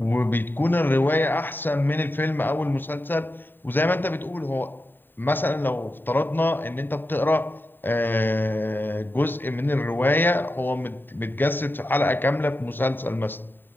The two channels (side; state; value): right; late; 0.094 ms